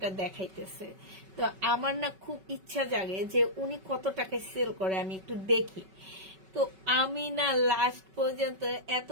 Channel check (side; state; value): left; late; 5.3 ms